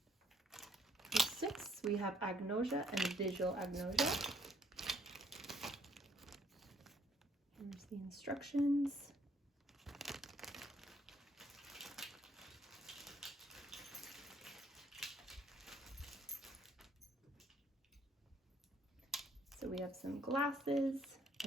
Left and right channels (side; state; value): both; normal; correlation 0.65